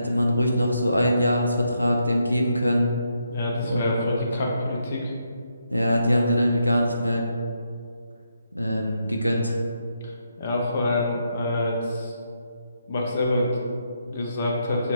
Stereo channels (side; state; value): both; inverted; correlation -0.79